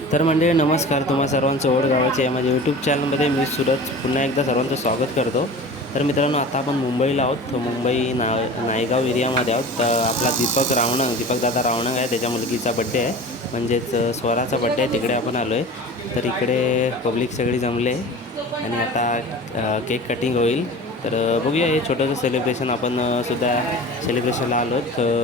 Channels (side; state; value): both; normal; correlation 0.37